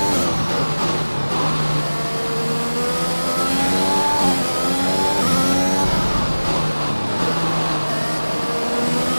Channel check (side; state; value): both; inverted; correlation -1.00